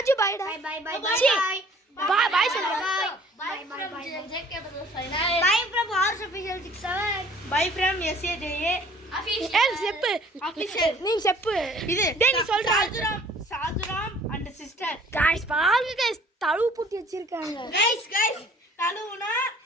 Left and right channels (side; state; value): both; normal; correlation 0.54